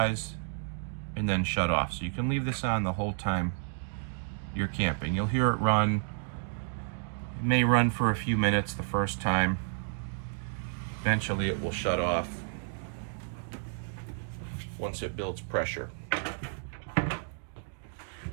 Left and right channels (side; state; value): left; silent; digital silence